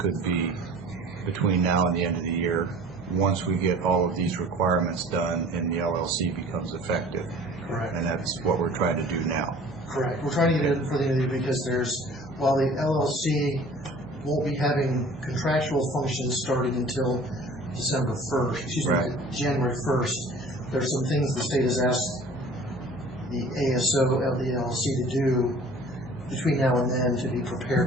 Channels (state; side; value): normal; both; correlation 0.47